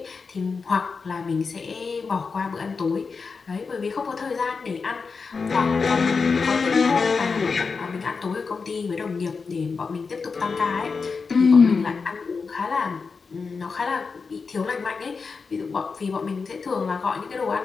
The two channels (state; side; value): quieter; right; 4.9 dB